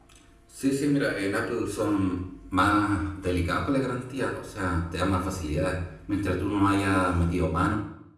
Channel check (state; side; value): identical; both; correlation 1.00